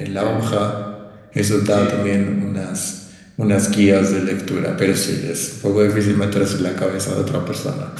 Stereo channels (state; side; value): identical; both; correlation 1.00